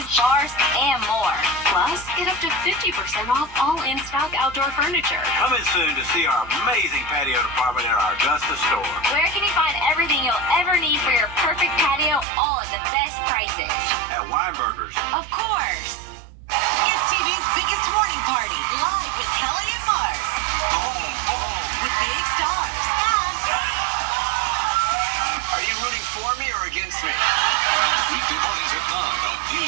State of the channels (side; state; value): left; drops out; at 12.2 s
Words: bars, and more. Plus, get up to 50% off all in-stock outdoor furniture. Come in soon to see our amazing patio department in our Augusta store. Where can you find everything you'll ever need for your perfect patio, all at the best prices? At Weinberger's. Of course. It's TV's biggest morning party, live with Kelly and Mark. With big stars. Are you rooting for me or against me? Weekday mornings at 9 on